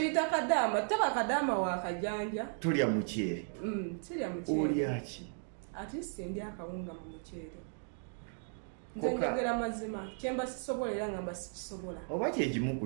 kadaama taba kadaama wakajanja tulya muceere sirya muceere olyaki ate sindi akawunga mu muceere nze njogera mazima kyemba sisobola era ngamba sikisobola oba kyekimu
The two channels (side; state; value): left; silent; 54 dB below the other